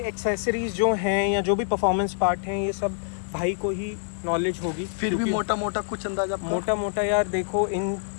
जो हैं या जो भी परफॉर्मेंस पार्ट हैं, ये सब भाई को ही नॉलेज होगी। फिर भी क्योंकि मोटा मोटा कुछ अंदाजा आपका? मोटा मोटा यार देखो, इन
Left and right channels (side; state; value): right; silent; digital silence